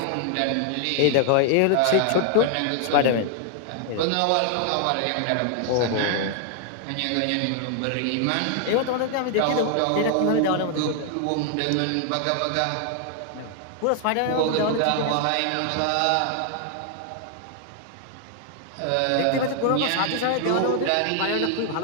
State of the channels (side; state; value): both; different; correlation 0.00